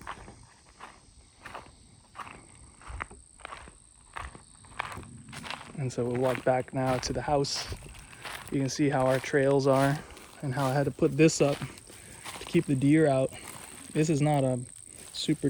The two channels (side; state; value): both; identical; correlation 1.00